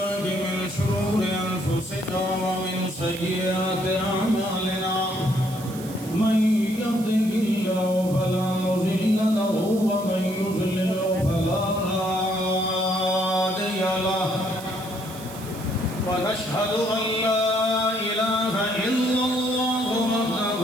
من شرور أنفسنا ومن سيئات أعمالنا من يهده الله فلا مضل له ومن يضلل فلا هادي له ونشهد أن لا إله إلا الله وحده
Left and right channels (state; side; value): noise; right; hiss, 16 dB below the sound